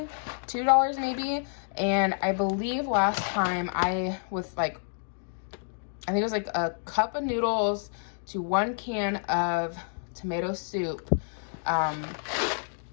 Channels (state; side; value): silent; right; digital silence